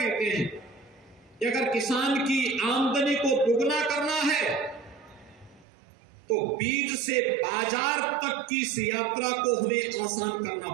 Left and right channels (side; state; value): left; drops out; at 5.7 s